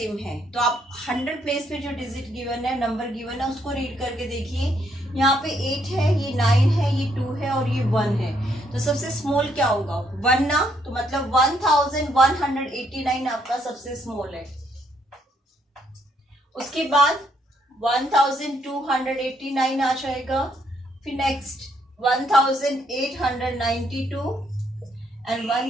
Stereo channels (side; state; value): both; normal; correlation 0.72